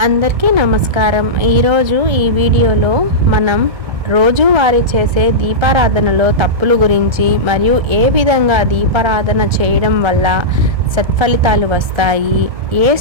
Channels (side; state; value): left; late; 1.7 ms